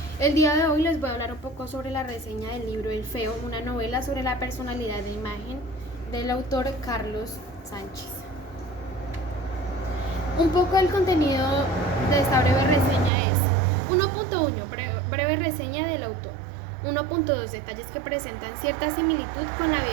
El día de hoy les voy a hablar un poco sobre la reseña del libro El Feo, una novela sobre la personalidad de imagen del autor Carlos Sánchez. Un poco el contenido de esta breve reseña es 1.1 breve reseña del autor. 1.2 detalles que presentan cierta similitud con la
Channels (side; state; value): left; drops out; at 13.1 s